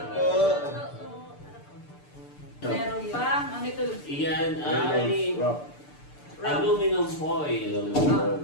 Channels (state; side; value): late; right; 6.8 ms